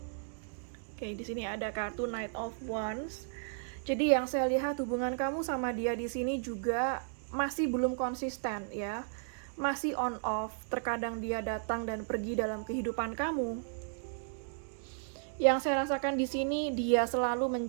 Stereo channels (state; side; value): silent; left; digital silence